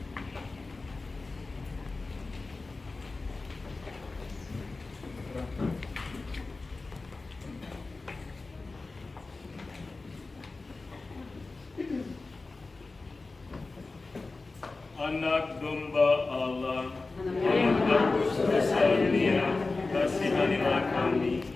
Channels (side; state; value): right; quieter; 3.6 dB